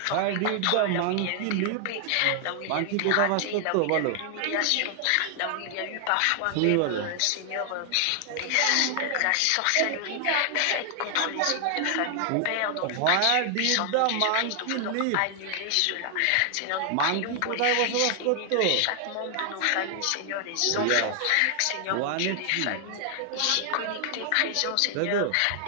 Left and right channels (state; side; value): different; both; correlation 0.00